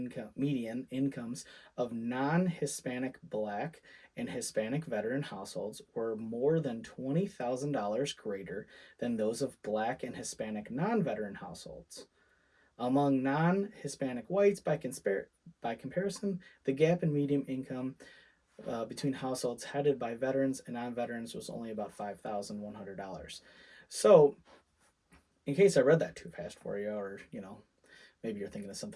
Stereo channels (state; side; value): identical; both; correlation 1.00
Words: incomes of non-Hispanic Black and Hispanic veteran households were more than $20,000 greater than those of Black and Hispanic non-veteran households. Among non-Hispanic whites, by comparison, the gap in median income between households headed by veterans and non-veterans was only about $5,100. So, in case I read that too fast for you, or maybe you're thinking of